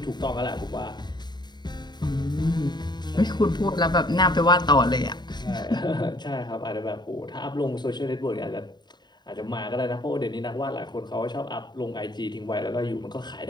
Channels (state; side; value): late; right; 0.21 ms